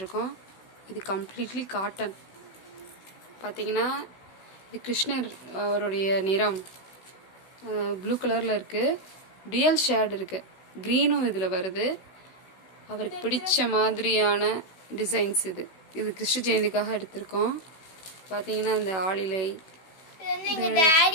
இது கம்ப்ளீட்லி காட்டன். பார்த்தீங்கன்னா இது கிருஷ்ணர் அவருடைய நிறம் ப்ளூ கலரில் இருக்குது. டியூயல் ஷேட் இருக்குது, க்ரீனும் இதில் வருது. அவருக்கு பிடிச்ச மாதிரியான டிசைன்ஸ் இது. இது கிருஷ்ண ஜெயந்திக்காக எடுத்திருக்கோம். பார்த்தீங்கன்னா இந்த ஆளிலை எங்க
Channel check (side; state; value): right; late; 16 ms